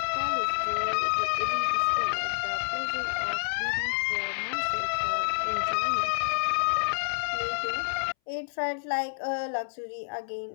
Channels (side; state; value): right; silent; 59 dB below the other